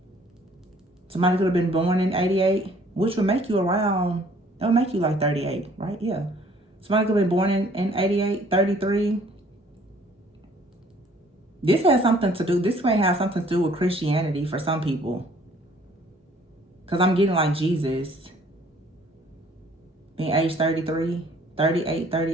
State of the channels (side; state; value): both; normal; correlation 0.58